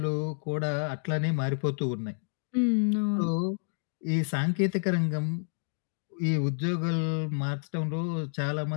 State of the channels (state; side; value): silent; right; digital silence